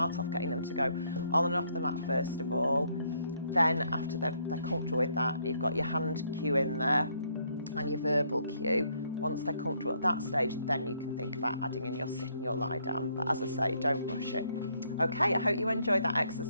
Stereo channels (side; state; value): both; inverted; correlation -0.70